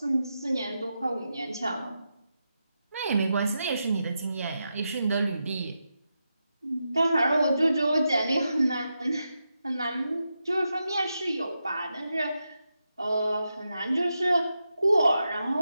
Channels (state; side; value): inverted; both; correlation -0.87